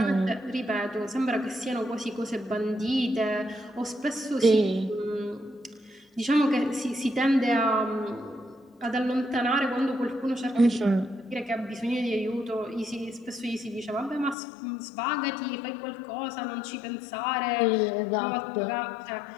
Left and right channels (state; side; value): drops out; right; at 14.4 s